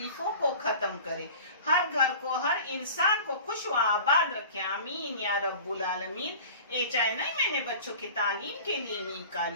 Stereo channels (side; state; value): both; inverted; correlation -0.41